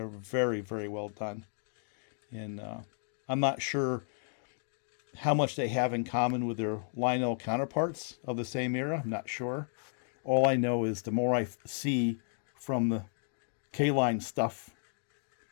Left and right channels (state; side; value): silent; right; digital silence